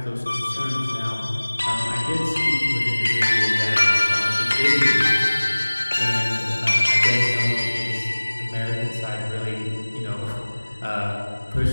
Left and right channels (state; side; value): inverted; both; correlation -1.00